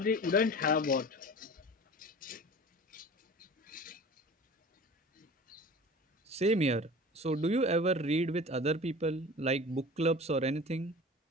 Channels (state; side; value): normal; both; correlation 0.39